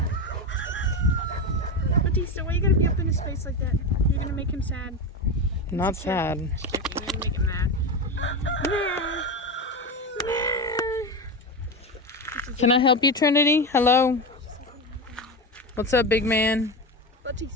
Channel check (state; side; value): normal; both; correlation 0.19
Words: Batista, why you gotta be up in his face like that? You're gonna make him sad. Not sad. You're gonna make him mad. Can I help you, Trinity? Hello? What's up, big man?